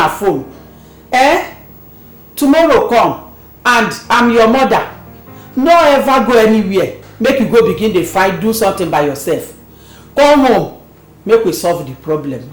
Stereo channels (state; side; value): identical; both; correlation 1.00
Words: phone. Tomorrow come and I'm your mother. No ever go anywhere. Make you go begin the fight, do something by yourself. Come home. Make we solve the problem.